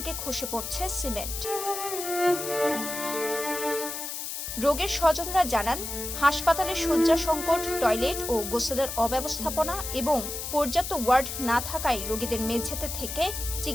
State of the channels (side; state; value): left; noise; hiss, 6 dB below the sound